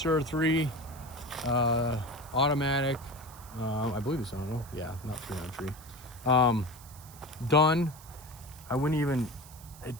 3 automatic. I believe it's on. Yeah, not 393. Done. I wouldn't even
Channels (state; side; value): noise; right; hiss, 20 dB below the sound